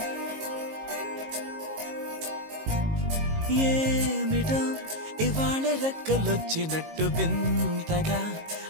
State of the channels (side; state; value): left; late; 19 ms